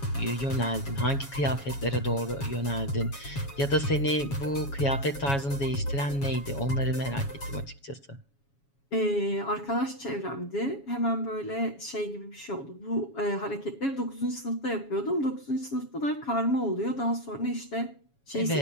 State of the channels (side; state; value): right; late; 7.2 ms